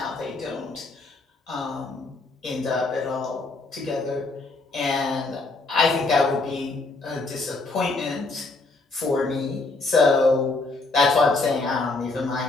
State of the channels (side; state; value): right; quieter; 3.5 dB